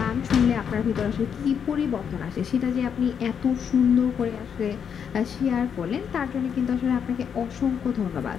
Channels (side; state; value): right; quieter; 7.5 dB